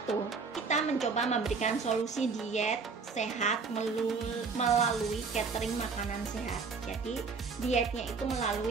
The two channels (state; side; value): quieter; left; 4.9 dB